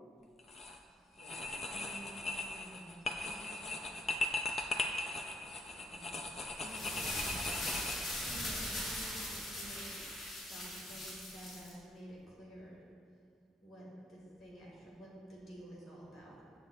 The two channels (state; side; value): normal; both; correlation 0.71